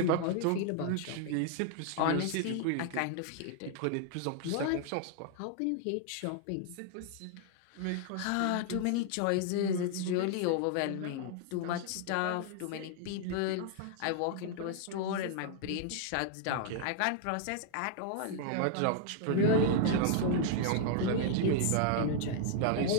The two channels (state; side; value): different; both; correlation 0.00